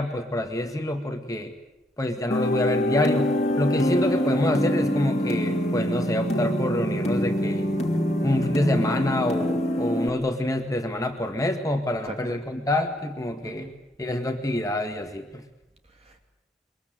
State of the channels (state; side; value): normal; both; correlation 0.73